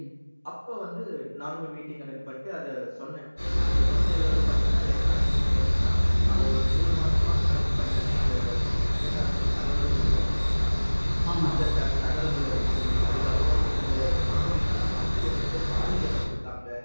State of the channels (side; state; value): both; inverted; correlation -1.00